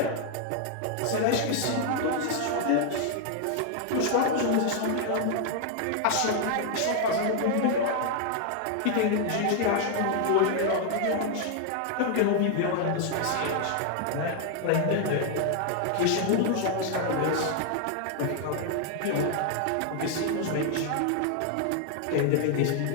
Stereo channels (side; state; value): both; different; correlation 0.00